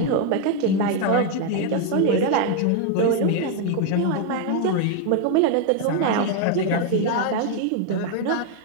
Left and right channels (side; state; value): both; different; correlation 0.01